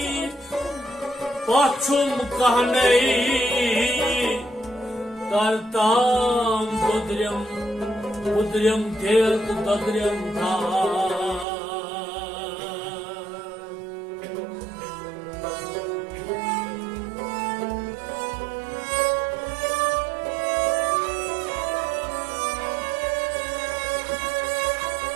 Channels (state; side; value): drops out; left; at 11.5 s